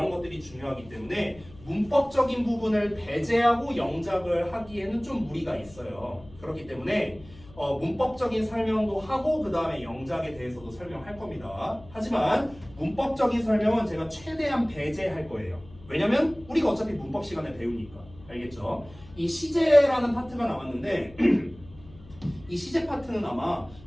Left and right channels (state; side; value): noise; left; hum, 21 dB below the sound